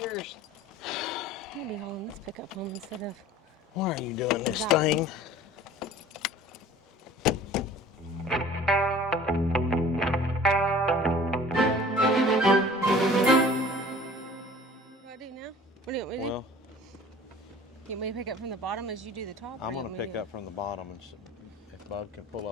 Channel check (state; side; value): normal; both; correlation 0.46